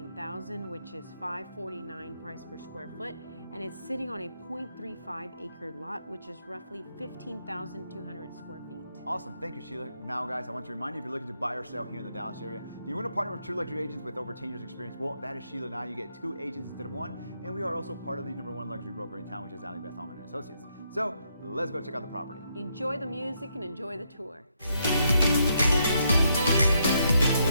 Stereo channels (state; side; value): inverted; both; correlation -0.77